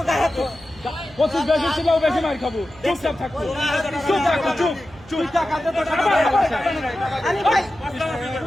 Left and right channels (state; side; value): noise; right; hum, 22 dB below the sound